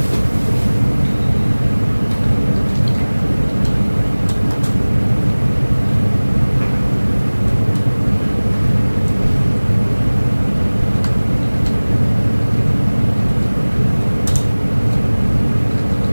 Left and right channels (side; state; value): both; inverted; correlation -1.00